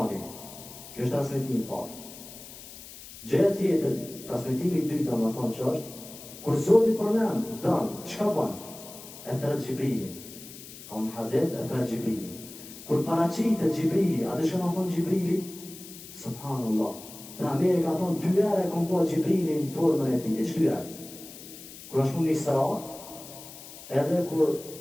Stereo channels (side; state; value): left; noise; hiss, 15 dB below the sound